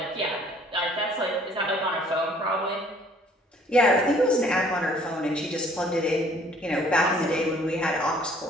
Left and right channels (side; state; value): both; normal; correlation 0.58